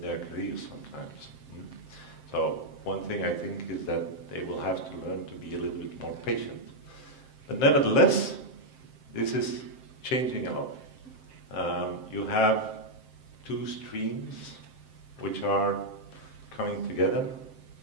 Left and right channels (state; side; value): late; right; 7.6 ms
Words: their careers sometimes. So one thing I think is that they will have to learn to be a little bit more patient. But nevertheless, this is changing a lot. You have two streams which are coming together,